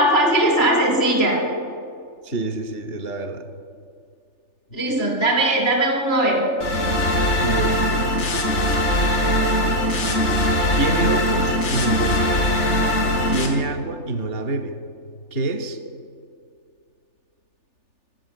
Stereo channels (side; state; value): right; late; 3.4 ms